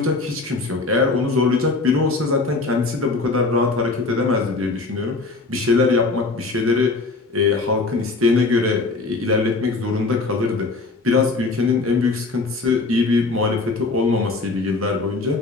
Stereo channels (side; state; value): right; quieter; 3.7 dB